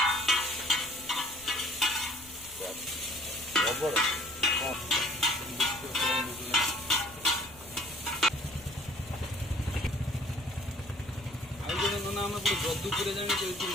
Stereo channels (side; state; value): left; noise; rumble, 21 dB below the sound